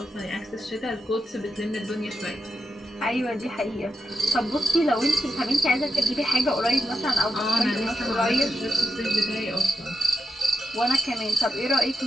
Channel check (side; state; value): both; normal; correlation 0.86